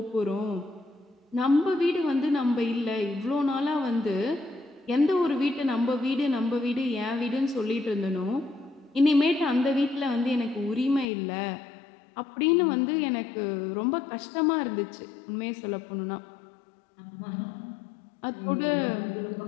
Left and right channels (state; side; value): drops out; right; at 11.1 s